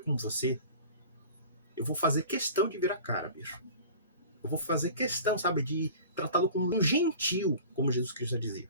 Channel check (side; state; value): both; inverted; correlation -0.41